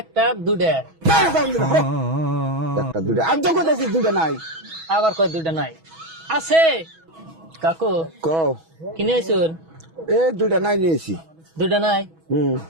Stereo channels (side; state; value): left; late; 6.2 ms